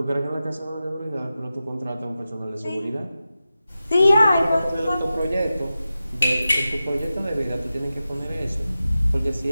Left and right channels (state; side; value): inverted; both; correlation -0.93